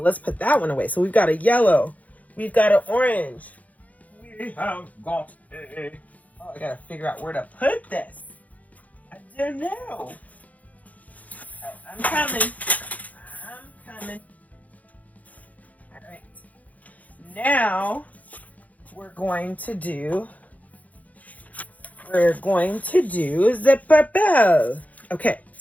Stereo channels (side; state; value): right; late; 0.074 ms